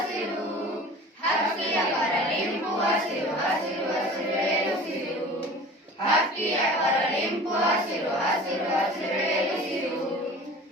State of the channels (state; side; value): normal; both; correlation 0.41